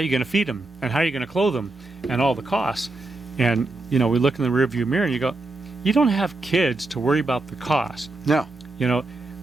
you going to feed them, and how are you going to clothe them, and all the costs. And we look in the rearview mirror and you go, you don't have kids to worry about the cost. No.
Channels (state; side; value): quieter; left; 3.0 dB